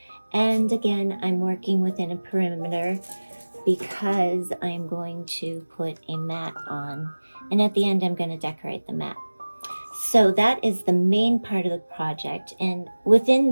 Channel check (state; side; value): inverted; both; correlation -1.00